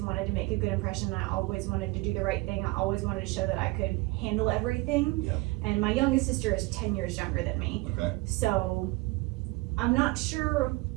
to make a good impression. I always wanted to do the right thing. I always wanted to show that I could handle everything. Yeah. And my youngest sister is 10 years younger than me. Okay. So I'm not sure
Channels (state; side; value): quieter; left; 22.9 dB